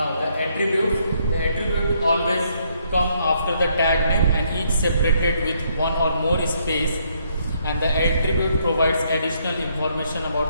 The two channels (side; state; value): both; inverted; correlation -0.71